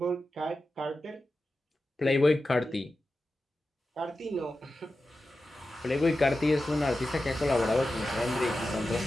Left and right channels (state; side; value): normal; both; correlation 0.92